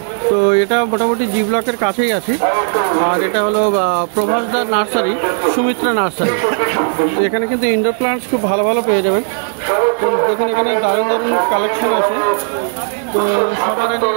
তো এটা মোটামুটি জি ব্লকের কাছেই আছে। আর এটা হলো প্রভাসদার নার্সারি, সুমিত্রা নার্সারি। তো এখানে কিন্তু ইনডোর প্লান্টস খুব ভালো ভালো পেয়ে যাবেন। তো দেখুন এখানে দারুণ দারুণ কালেকশন আছে। তো সবার আগে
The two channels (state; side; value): silent; left; 57 dB below the other